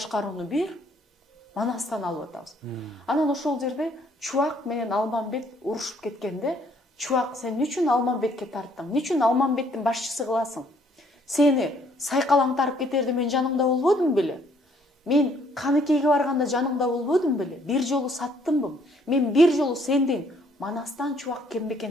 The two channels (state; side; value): normal; both; correlation 0.65